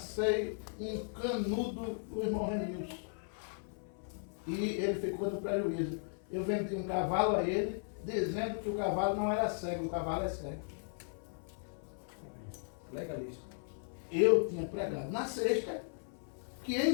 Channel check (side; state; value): right; silent; 53 dB below the other